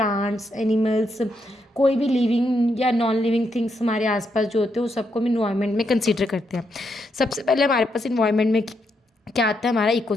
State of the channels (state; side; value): normal; both; correlation 0.80